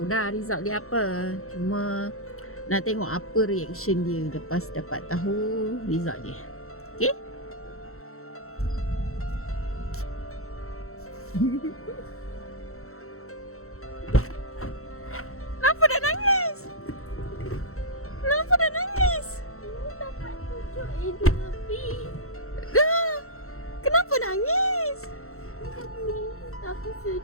dah result dia apa. Cuma nak tengok apa reaction dia lepas dapat tahu result dia. Okay? Kenapa dah nangis? Kenapa dah nangis? Dapat 7A2B. Dah. Kenapa nangis? Tapi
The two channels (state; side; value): late; right; 0.63 ms